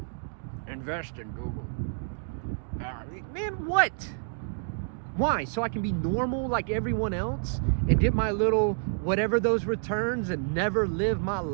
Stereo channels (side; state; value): left; silent; digital silence